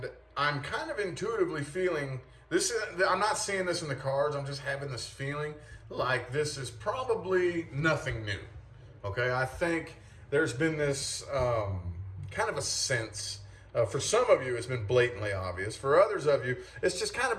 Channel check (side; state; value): both; identical; correlation 1.00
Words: I'm kind of intuitively feeling this. I'm not seeing this in the cards. I'm just having this feeling like this is probably nothing new. Okay, I think there's been this kind of a sense. For some of you, it's been blatantly obvious. For others of you, it's just kind